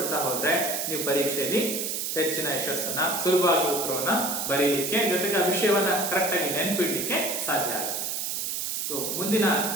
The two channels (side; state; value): right; noise; hiss, 2 dB below the sound